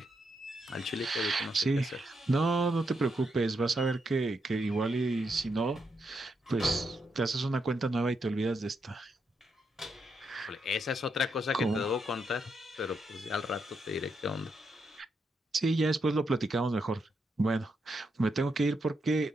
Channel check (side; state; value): both; normal; correlation 0.81